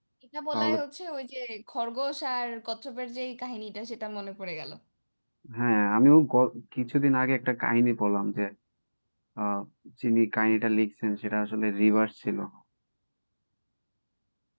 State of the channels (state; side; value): inverted; both; correlation -1.00